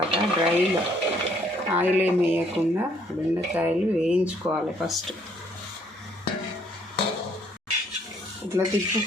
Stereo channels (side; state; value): both; normal; correlation 0.65